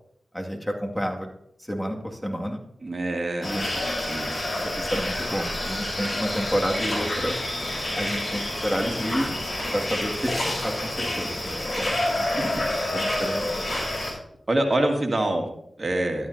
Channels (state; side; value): normal; both; correlation 0.95